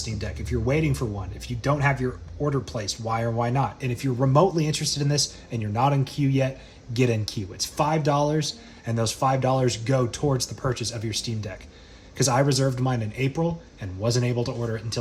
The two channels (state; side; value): identical; both; correlation 1.00